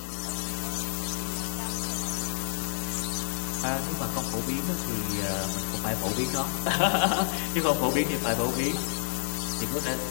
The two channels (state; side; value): silent; right; 58 dB below the other